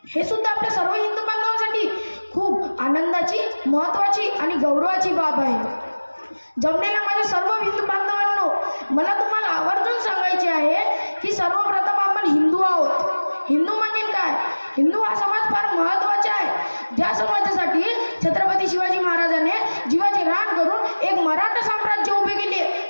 हे सुद्धा आपल्या सर्व हिंदू बांधवांसाठी खूप आनंदाची, महत्त्वाची आणि गौरवाची बाब आहे। जमलेल्या माझ्या सर्व हिंदू बांधवांनो, मला तुम्हाला आवर्जून सांगायचे आहे की सर्वप्रथम आपण हिंदू आहोत। हिंदू म्हणजे काय? हिंदू हा समाज फार महत्त्वाचा आहे, ज्या समाजासाठी छत्रपती शिवाजी महाराजांनी जीवाचे रान करून एक मराठा साम्राज्य उभे केले।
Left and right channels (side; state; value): both; inverted; correlation -1.00